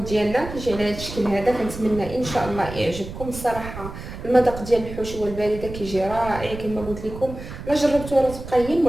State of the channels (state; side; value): noise; right; rumble, 11 dB below the sound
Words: ديالنا كيجي على هذا الشكل هذا. كنتمنى ان شاء الله يعجبكم. الصراحه المذاق ديال الحشوه البارده كيجي رائع كما قلت لكم. لا جربتوها راه تبقى هي